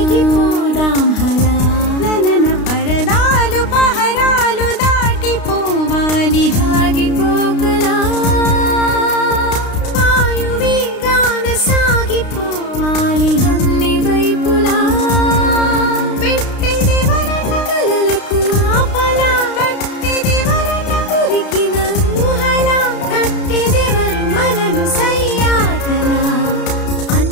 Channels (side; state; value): right; late; 32 ms